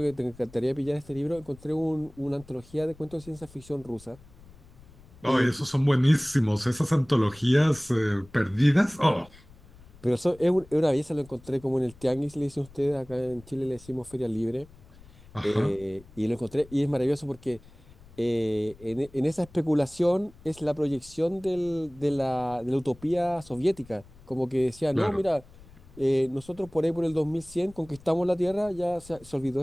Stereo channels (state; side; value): noise; left; rumble, 23 dB below the sound